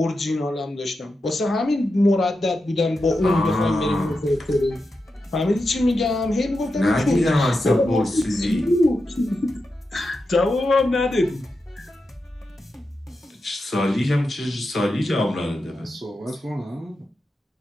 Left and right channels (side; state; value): both; normal; correlation 0.89